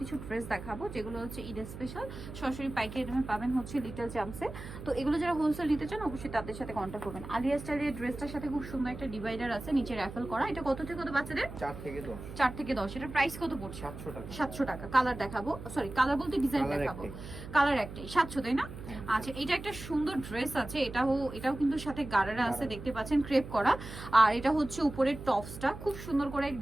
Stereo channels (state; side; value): noise; right; hum, 11 dB below the sound